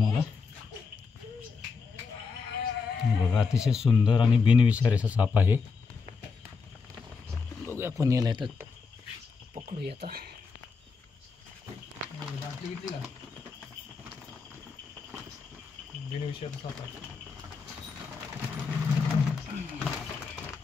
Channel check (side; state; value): right; quieter; 5.0 dB